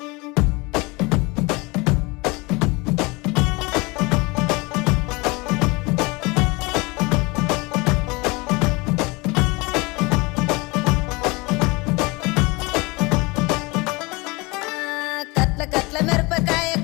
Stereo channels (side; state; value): right; quieter; 25.1 dB